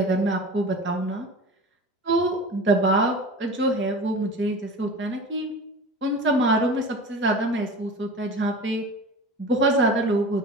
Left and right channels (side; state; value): both; normal; correlation 0.35